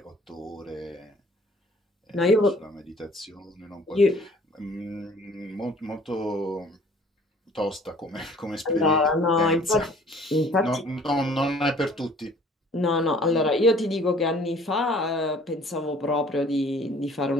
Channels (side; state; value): both; normal; correlation 0.53